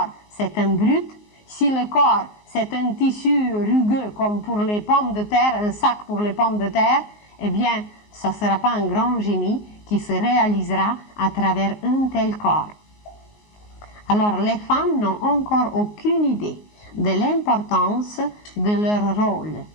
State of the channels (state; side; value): late; right; 19 ms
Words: c'est un brut, si le corps, c'est un tissu rugueux comme pour les pommes de terre, un sac pour les pommes de terre, eh bien, ça ne sera pas un grand génie qui se réalisera à travers un tel corps. Alors, les femmes n'ont encore aucune idée de l'importance de leur rôle.